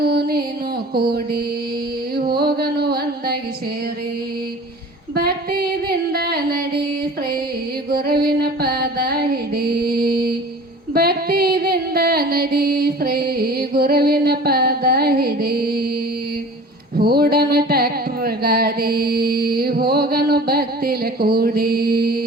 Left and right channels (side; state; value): both; normal; correlation 0.42